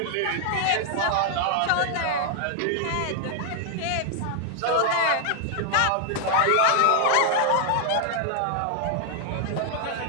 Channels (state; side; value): different; both; correlation 0.00